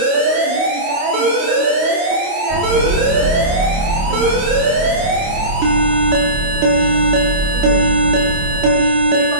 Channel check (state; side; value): late; left; 28 ms